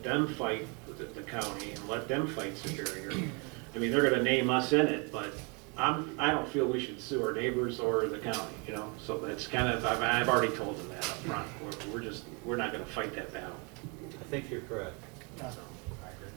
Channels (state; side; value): quieter; left; 32.8 dB